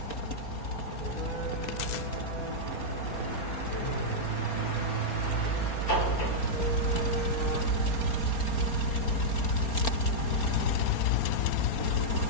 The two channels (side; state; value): right; late; 4.3 ms